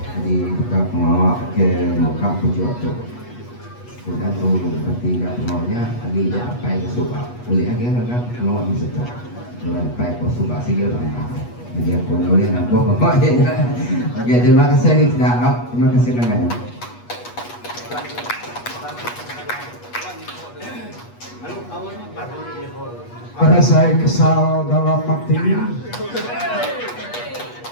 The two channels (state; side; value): late; right; 8.3 ms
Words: jadi kita pengawal ke muka pujuk tu sudah tu bertiga pengawalnya lagi sampai ke Subang boleh lagi kan pengawal di situ sampai ke Subang sih orang jadi aku boleh nampak pokoknya. Oke terima kasih kita terima kasih banyak. Pada saya kesal dalam hati